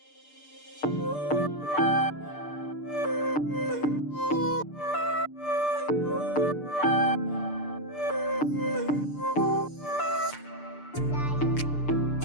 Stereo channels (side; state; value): right; late; 6.7 ms